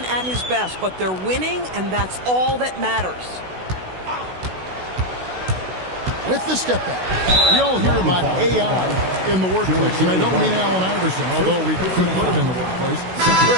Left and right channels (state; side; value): late; left; 16 ms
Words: at his best, but they're winning, and that's all that matters. With the step back. We all hear about AI in the workplace, and I don't mean Allen Iverson, although we could put him in the workplace.